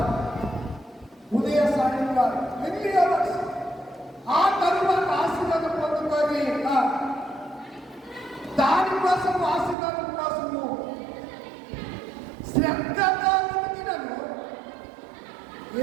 ఉదయ సాయం కాదు, ఎర్లీ అవర్స్. ఆ తరువాత ఆశీర్వాదం పొందుకొని దానికోసం, ఆశీర్వాదం కోసము శ్రద్ధగా వెతికినను ఏ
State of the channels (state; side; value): drops out; left; at 9.8 s